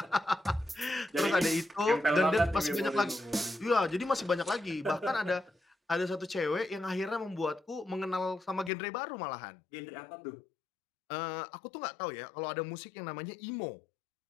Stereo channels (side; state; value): right; drops out; at 8.7 s